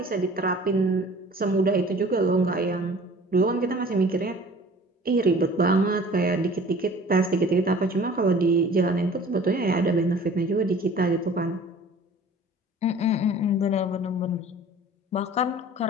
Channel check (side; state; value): both; normal; correlation 0.47